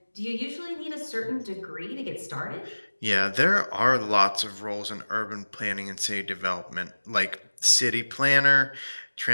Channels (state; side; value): inverted; both; correlation -1.00